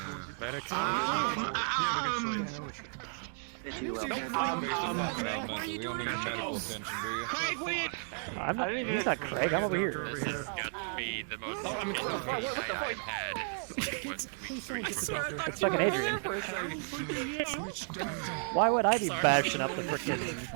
You will. We don't need medical attention, do you? I'm not, he's not Craig, I'm over here. This has got to be the most I've had. It's fucking Adrian. Why would I be bashing up the frickin'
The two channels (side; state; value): left; silent; 55 dB below the other